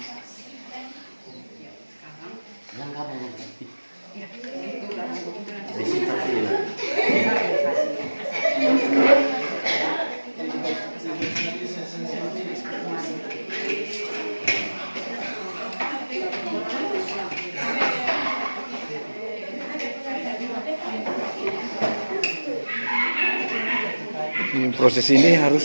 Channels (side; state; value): both; inverted; correlation -1.00